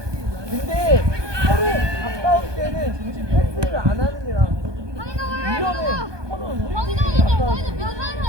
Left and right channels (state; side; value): late; left; 1.2 ms